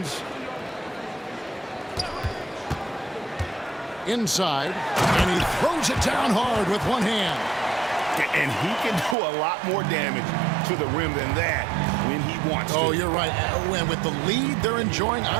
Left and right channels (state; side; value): drops out; left; at 9.2 s